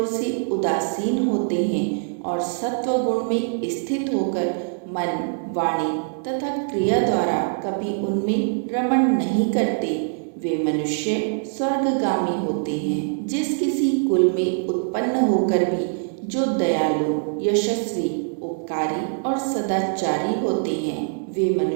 से उदासीन होते हैं और सत्व गुण में स्थित होकर मन, वाणी तथा क्रिया द्वारा कभी उनमें रमण नहीं करते, वे मनुष्य स्वर्गगामी होते हैं। जिस किसी कुल में उत्पन्न होकर भी जो दयालु, यशस्वी, उपकारी और सदाचारी होते हैं, वे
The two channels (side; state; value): left; silent; digital silence